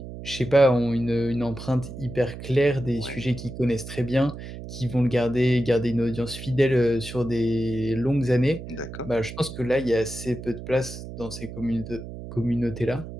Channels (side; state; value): right; noise; hum, 11 dB below the sound